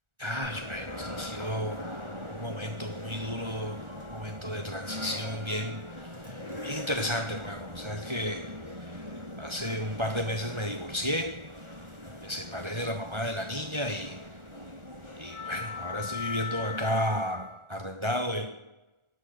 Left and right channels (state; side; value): late; left; 1.4 ms